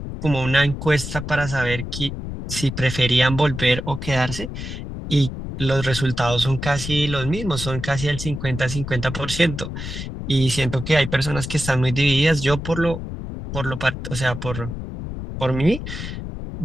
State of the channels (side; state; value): left; noise; rumble, 7 dB below the sound